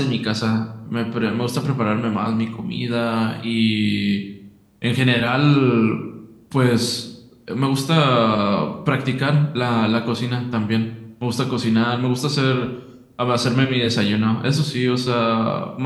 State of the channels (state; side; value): identical; both; correlation 1.00